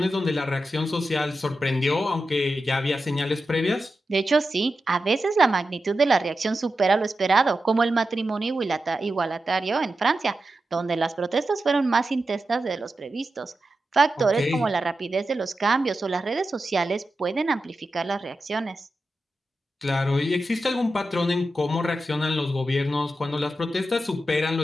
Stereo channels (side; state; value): both; normal; correlation 0.91